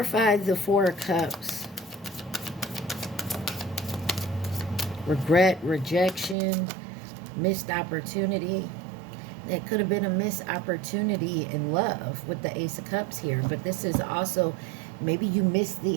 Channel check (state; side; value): drops out; left; at 6.4 s